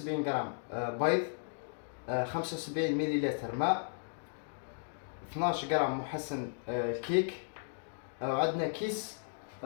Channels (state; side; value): silent; right; digital silence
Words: غرام بيض، 75 مليلتر ماء، 12 غرام محسن الكيك. عندنا كيس